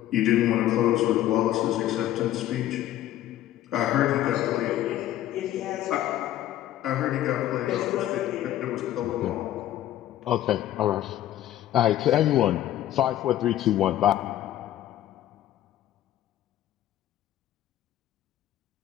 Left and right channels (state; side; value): quieter; right; 13.1 dB